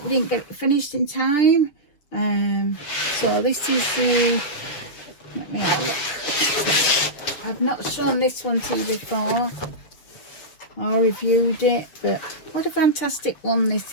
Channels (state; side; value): late; right; 6.9 ms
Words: we didn't get it finished in time. So this is the, let me have a look. I've not shown this one to you before. I reviewed it, but what a fantastic one this